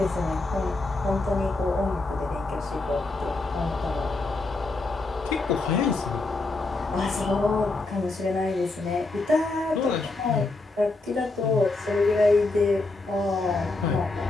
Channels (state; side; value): quieter; right; 3.3 dB